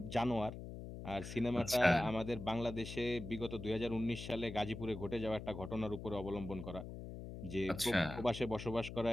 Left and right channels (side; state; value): left; noise; hum, 9 dB below the sound